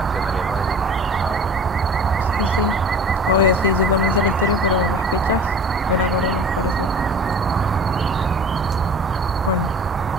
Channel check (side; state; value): both; normal; correlation 0.41